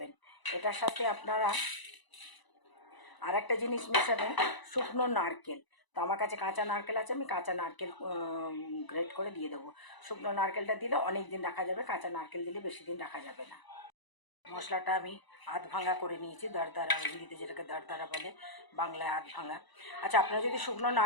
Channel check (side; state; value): right; late; 1.0 ms